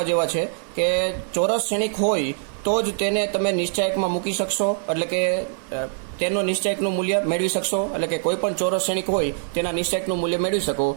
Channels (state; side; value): silent; left; 63 dB below the other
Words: જેવા છે કે ચોરસ શ્રેણિક હોય તો જ તેને તમે નિશ્ચાયકમાં મૂકી શકશો, એટલે કે તેનો નિશ્ચાયકનું મૂલ્ય મેળવી શકશો. એટલે કે કોઈ પણ ચોરસ શ્રેણિક હોય તેના નિશ્ચાયકનું મૂલ્ય મેળવી શકો.